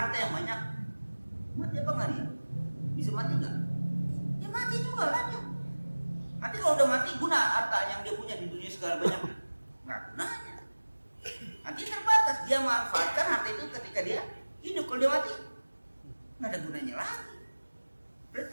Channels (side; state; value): both; inverted; correlation -1.00